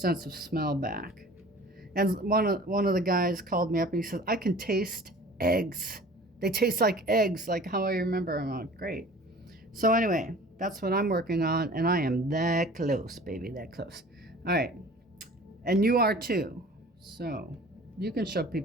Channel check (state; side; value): normal; both; correlation 0.45